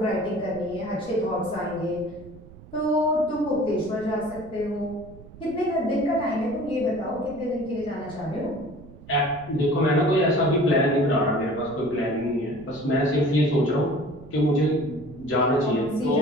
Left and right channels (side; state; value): right; noise; rumble, 19 dB below the sound